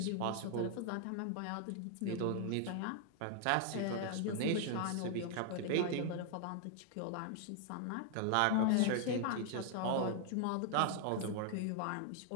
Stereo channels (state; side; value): different; both; correlation 0.00